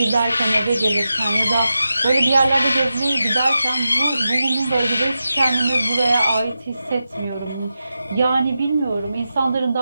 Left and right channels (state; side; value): inverted; both; correlation -0.91